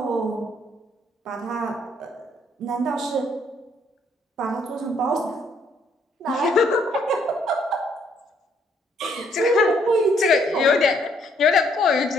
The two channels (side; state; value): both; normal; correlation 0.68